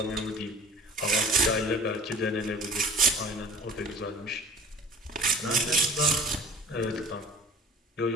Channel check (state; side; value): normal; both; correlation 0.46